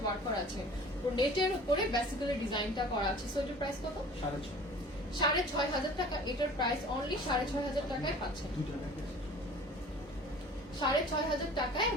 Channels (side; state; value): both; normal; correlation 0.45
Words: ওয়ার্ক করা আছে। তো নেটের উপরে বেসিক্যালি ডিজাইনটা করা আছে। সো এটার প্রাইস কত? 6,500 টাকা। এটার প্রাইস অনলি 6,500 টাকায় পাচ্ছেন। 6,500 টাকায়